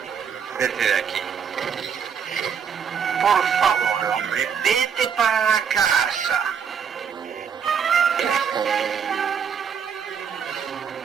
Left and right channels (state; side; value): quieter; left; 7.3 dB